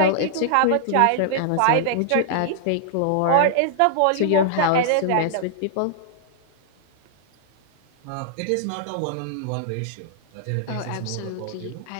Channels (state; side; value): different; both; correlation -0.01